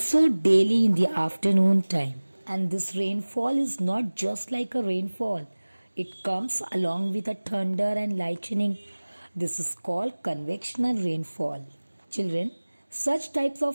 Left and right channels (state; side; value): inverted; both; correlation -1.00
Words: daily in the afternoon time. And this rainfall is not just like a rainfall, it comes along with a thunder and lightning. This is called convectional rainfall. Children, such types